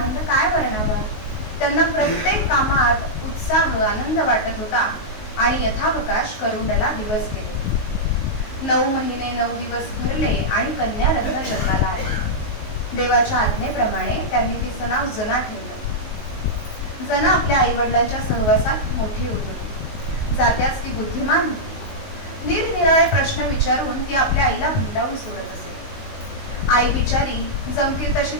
काय वर्णावा. त्यांना प्रत्येक कामात उत्साह आनंद वाटत होता आणि यथावकाश करुंडला दिवस गेले. 9 महिने 9 दिवस भरले आणि कन्या रत्न जन्माला आले. देवाच्या आज्ञेप्रमाणे त्यांनी तिचं नाव जना ठेवलं. जना आपल्या आई वडिलांच्या सहवासात मोठी होत होती. जात्यास ती बुद्धिमान होती. निरनिराळे प्रश्न विचारून ती आपल्या आईला भंडावून सोडत असे. आई बिचारी जमतील तशी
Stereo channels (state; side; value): late; right; 19 ms